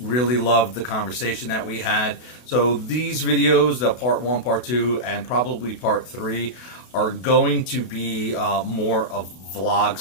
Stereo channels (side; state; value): right; late; 32 ms